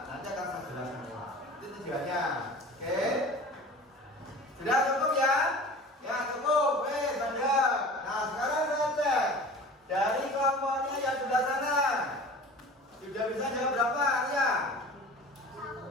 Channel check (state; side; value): normal; both; correlation 0.39